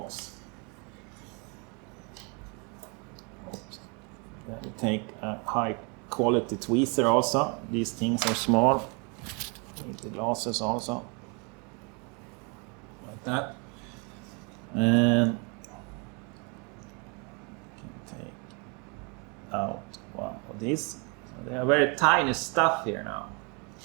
Then we take a high quality tweezer also. These things are small. Need the glasses also. Like that. And take out one of these. So they are very tiny stuff here now.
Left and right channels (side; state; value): left; quieter; 33.7 dB